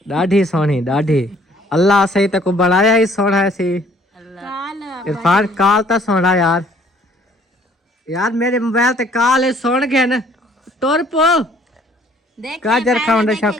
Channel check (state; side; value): normal; both; correlation 0.59